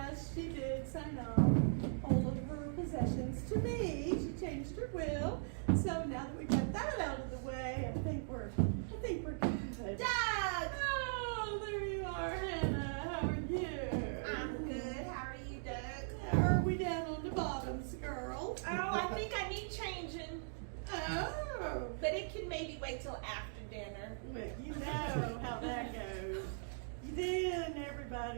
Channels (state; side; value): silent; left; digital silence